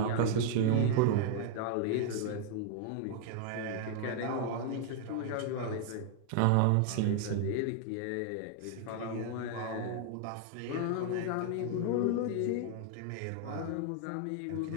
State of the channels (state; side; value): different; both; correlation 0.00